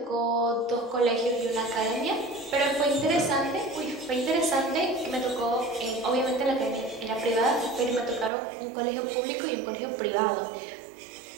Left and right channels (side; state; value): left; drops out; at 8.3 s